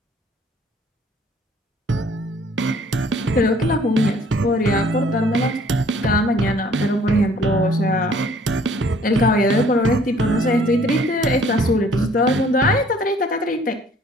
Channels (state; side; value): normal; both; correlation 0.57